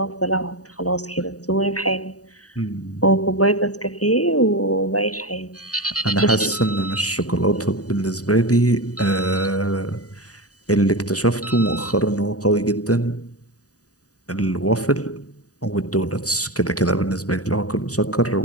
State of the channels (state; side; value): late; right; 0.67 ms